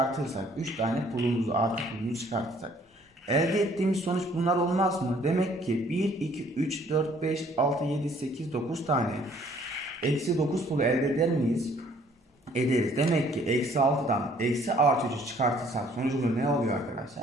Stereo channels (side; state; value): both; normal; correlation 0.59